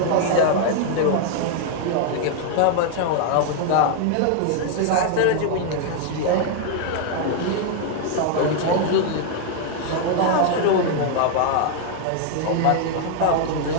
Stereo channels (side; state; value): both; different; correlation 0.00